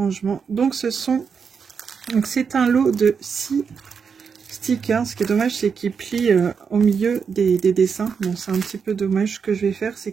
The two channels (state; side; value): quieter; left; 6.1 dB